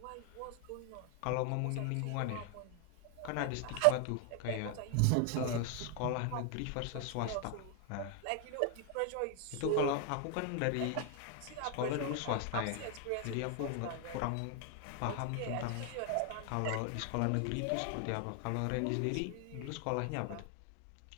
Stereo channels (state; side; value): different; both; correlation 0.00